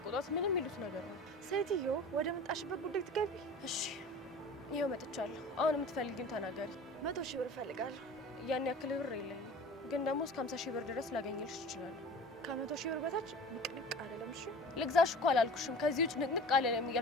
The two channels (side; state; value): both; normal; correlation 0.39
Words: ምንም ይሉት ነገር ነው። ሴትዮ ወደ መጣሽበት ጉዳይ ትገቢ። እሺ ይኸው መጥቻለሁ። አሁን የምትፈልጊውን ተናገሪ። 100 ሺህ ብር እፈልጋለሁ። ያን ያክል ብር የለኝም፣ ግን ደግሞ እስከ 50 ሺህ ብር ድረስ ላገኝልሽ እችላለሁ። ከ100 ሺህ ብር በታች ንቅንቅ አይደለም። እሺ ልግዛሽ እኮ አላልኩሽም። ከዚህ ውጭ ንቅንቅ አለለም